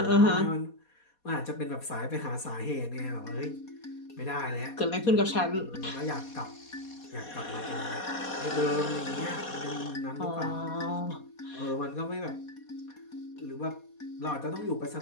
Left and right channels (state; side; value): late; right; 4.2 ms